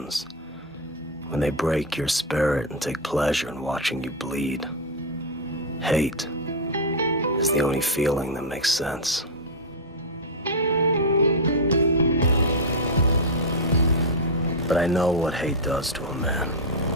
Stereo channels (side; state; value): both; normal; correlation 0.00